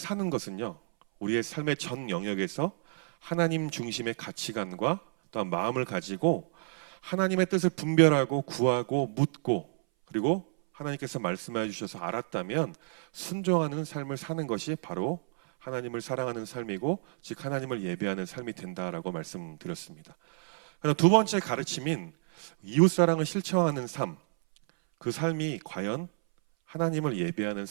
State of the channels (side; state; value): left; silent; 58 dB below the other